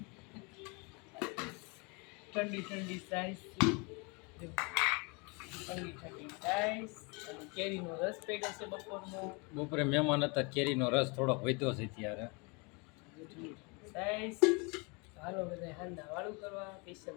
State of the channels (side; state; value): right; quieter; 30.4 dB